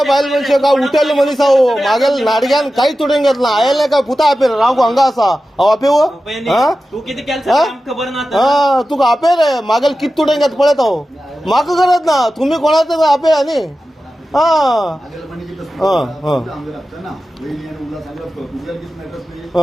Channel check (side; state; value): both; normal; correlation 0.93